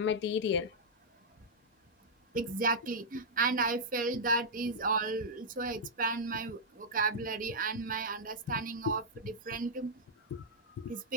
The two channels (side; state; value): both; normal; correlation -0.07